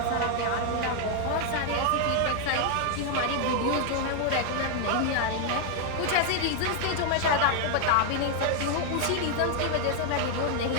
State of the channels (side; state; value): both; different; correlation 0.00